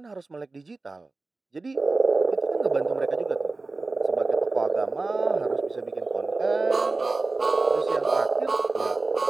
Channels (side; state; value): left; quieter; 3.5 dB